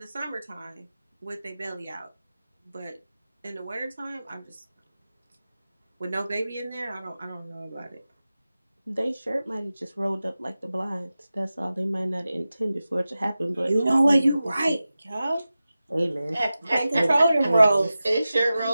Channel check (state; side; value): inverted; both; correlation -0.95